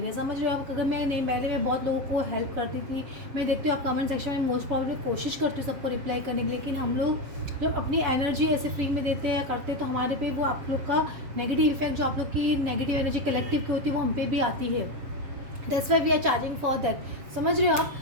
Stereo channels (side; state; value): left; late; 7.4 ms